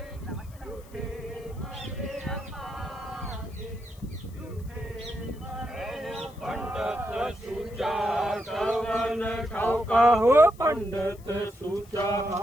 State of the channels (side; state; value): left; noise; hiss, 26 dB below the sound